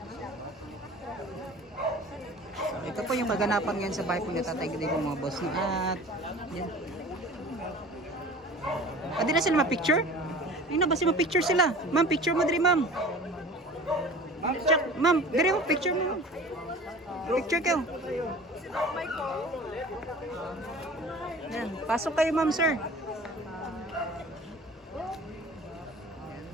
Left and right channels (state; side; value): normal; both; correlation 0.42